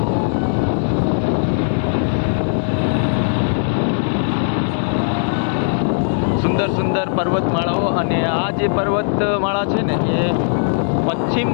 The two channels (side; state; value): right; silent; digital silence